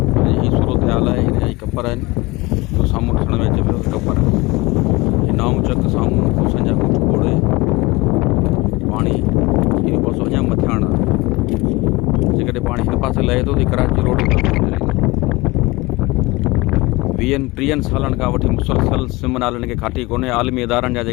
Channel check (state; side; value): quieter; right; 22.6 dB